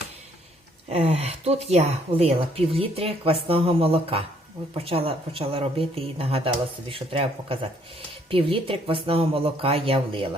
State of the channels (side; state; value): both; normal; correlation 0.66